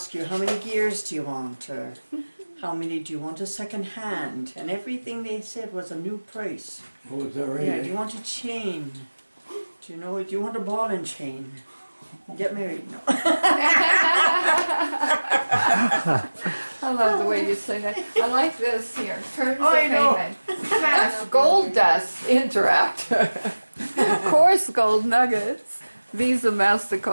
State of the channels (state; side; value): inverted; both; correlation -1.00